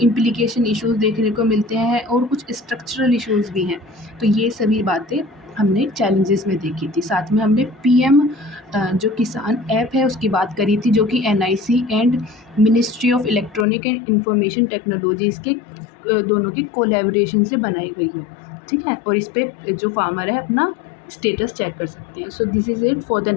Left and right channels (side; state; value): right; drops out; at 13.7 s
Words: इम्प्लीकेशन इश्यूज़ देखने को मिलते हैं और कुछ स्ट्रक्चरल इश्यूज़ भी हैं। तो ये सभी बातें हमने चैलेंजेस में देखी थी। साथ में हमने पीएम जो किसान ऐप है उसकी बात करी थी जो कि NIC and ministry of electronic and information technologies के दोनों की कोलैबोरेशन से बनाई गई है, ठीक है। और इस पे जो फार्मर है अपना स्टेटस चेक कर सकते हैं। So this is it for the